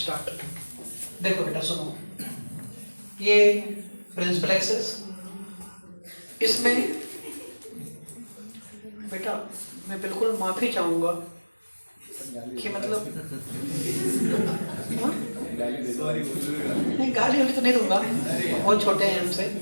देखो बेटा सुनो, ये प्रिंसिपल एक्सिस, इसमें बेटा मैं बिल्कुल माफी चाहूंगा कि मतलब नहीं, गाली वाली तो नहीं दूंगा, बहुत छोटे हैं हमसे,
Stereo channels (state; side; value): inverted; both; correlation -1.00